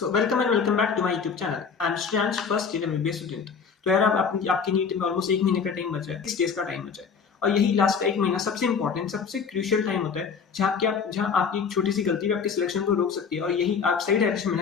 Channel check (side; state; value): right; quieter; 6.0 dB